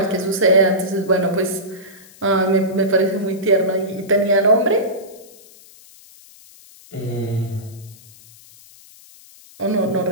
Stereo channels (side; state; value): left; noise; hiss, 23 dB below the sound